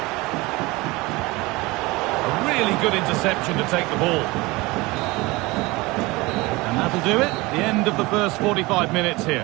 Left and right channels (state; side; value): quieter; left; 22.6 dB